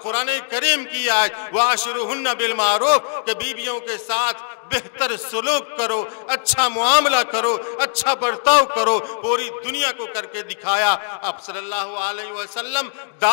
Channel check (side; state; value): right; silent; digital silence